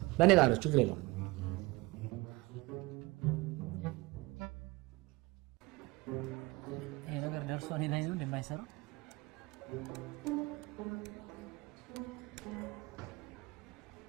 በእኔ ጋር ችግር የለውም። ይሄ ነገር ደርሶ እኔ ላይ ነው እንደማይሰራ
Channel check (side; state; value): left; quieter; 22.5 dB